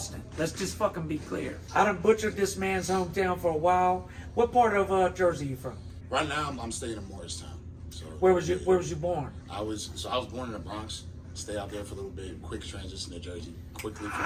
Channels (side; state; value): both; identical; correlation 1.00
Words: Let's just fucking be clear. I done butchered this man's hometown for a while. What part of Jersey you from? Right now, I'm staying in Morristown. So Where was you born? I was born in the Bronx. Stay out there for a little bit. Quick transition to Jersey. Quickly from